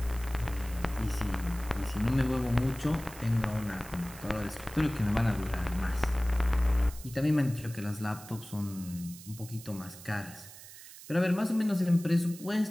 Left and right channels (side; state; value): right; noise; hiss, 16 dB below the sound